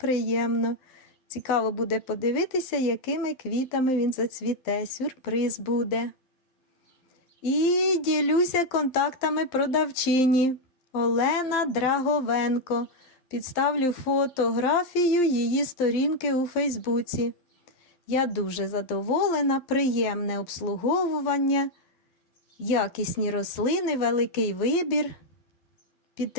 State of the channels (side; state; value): right; late; 11 ms